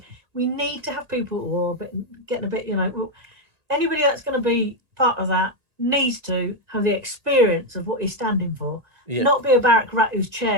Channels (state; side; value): late; left; 1.9 ms